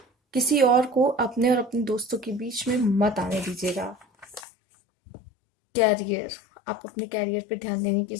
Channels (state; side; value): drops out; right; at 4.5 s